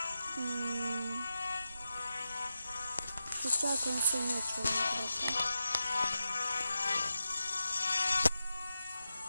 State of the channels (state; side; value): inverted; both; correlation -0.90